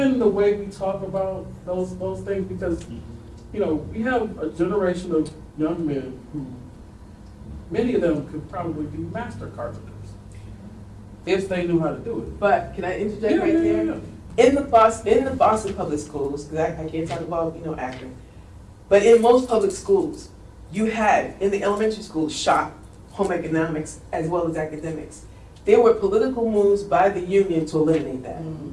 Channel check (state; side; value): identical; both; correlation 1.00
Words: the way we talk about those things, because, you know, we have a generation of young men who, many of them could probably be master carpenters if they knew how to do it. But can I interject right there? In the Boston public schools, because I can't talk about, you know, Akron, but in most public schools, you had, in the elementary schools, shop, home economics, as well as academics. There were political moves by the union to eliminate that.